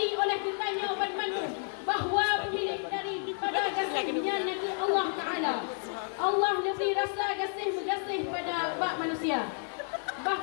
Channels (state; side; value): silent; right; 57 dB below the other